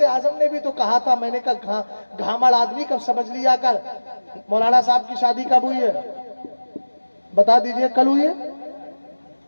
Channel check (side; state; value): both; inverted; correlation -1.00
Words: اعظم نے بھی تو کہا تھا، میں نے کہا گھامڑ آدمی کب سمجھ لیا کر۔ مولانا صاحب کی شادی کب ہوئی ہے؟ بتا دیجئے، کل ہوئی ہے؟